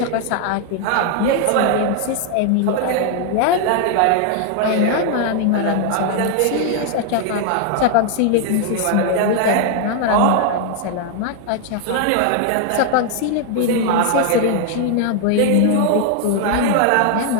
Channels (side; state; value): both; different; correlation 0.00